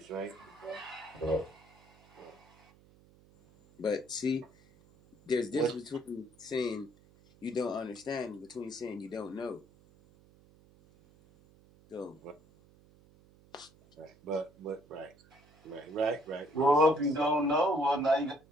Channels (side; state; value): right; noise; hum, 27 dB below the sound